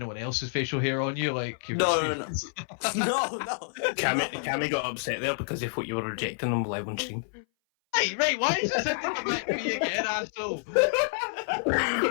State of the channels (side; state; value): right; silent; 58 dB below the other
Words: else's facial hair on you, like you've No, no, experienced. no, no. Cammy got upset there because he thought you were rejecting him live on stream. Right, why is this having to come back to me again, asshole?